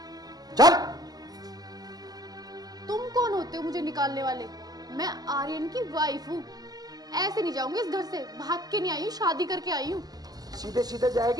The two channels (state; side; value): late; left; 0.19 ms